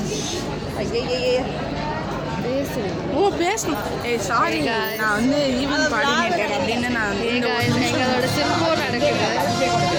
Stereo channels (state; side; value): identical; both; correlation 1.00